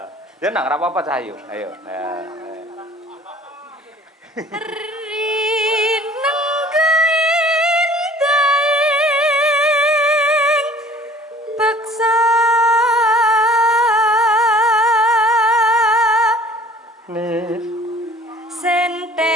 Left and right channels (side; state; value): both; normal; correlation 0.51